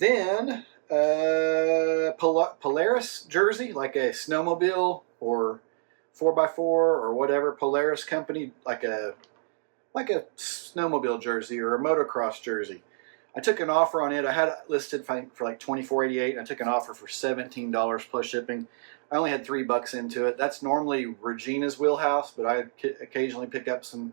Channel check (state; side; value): silent; left; digital silence